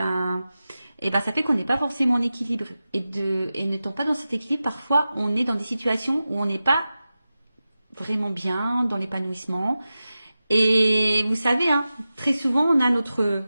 fait qu'on n'est pas forcément en équilibre. Et n'étant pas dans cet équilibre, parfois on est dans des situations où on n'est pas vraiment bien, dans l'épanouissement. Et vous savez, très souvent, on a notre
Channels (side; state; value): both; inverted; correlation -0.94